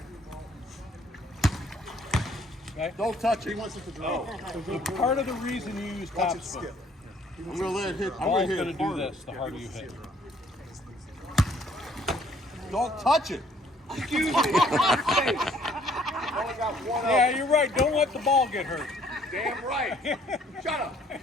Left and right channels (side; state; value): both; normal; correlation 0.62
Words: Okay? Don't touch He it. wants it to drop. So part of the reason you use Watch top it spin. skip. I'm gonna let it hit. I'm gonna Ball's hit going it to do harder. this the harder you hit. Don't touch it. Yeah, you're right. Don't let the ball get hurt. Damn right. Shut up.